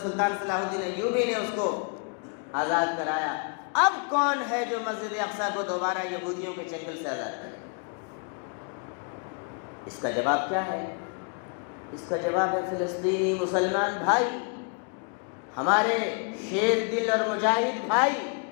سلطان صلاح الدین ایوبی نے اس کو آزاد کرایا۔ اب کون ہے جو مسجد اقصیٰ کو دوبارہ یہودیوں کے چنگل سے آزاد کرے؟ اس کا جواب کیا ہے؟ اس کا جواب ہے فلسطینی مسلمان بھائی، ہمارے شیر دل اور مجاہد بھائی۔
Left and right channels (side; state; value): right; quieter; 39.8 dB